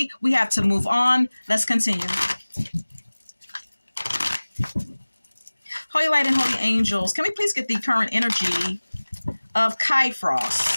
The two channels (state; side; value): inverted; both; correlation -1.00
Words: We have to move on. Let's continue. Holy light and holy angels, can we please get the current energy of Kai